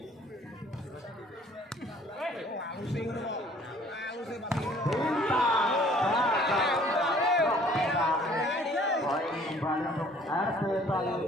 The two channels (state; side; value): normal; both; correlation 0.56